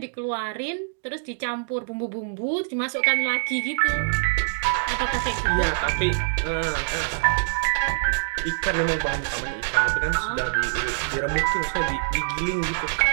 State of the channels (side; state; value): left; silent; digital silence